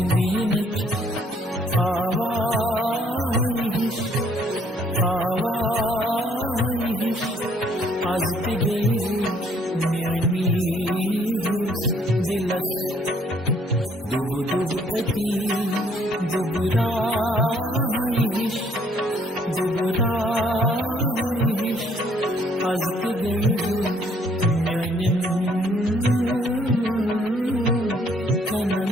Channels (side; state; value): both; normal; correlation 0.65